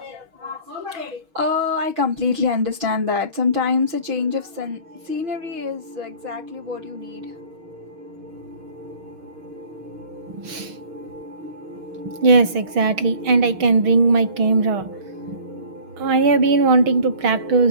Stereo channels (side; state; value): left; late; 6.2 ms